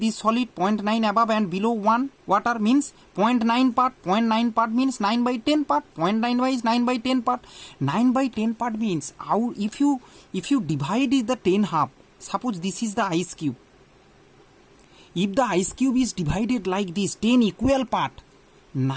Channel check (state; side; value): identical; both; correlation 1.00